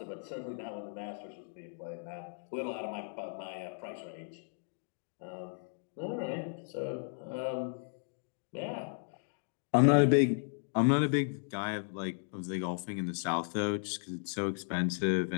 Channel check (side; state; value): right; silent; digital silence